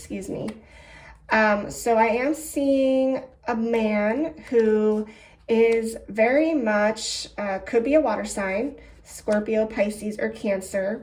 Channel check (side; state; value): both; identical; correlation 1.00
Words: me. So I am seeing a man who is very much, could be a water sign, Scorpio, Pisces, or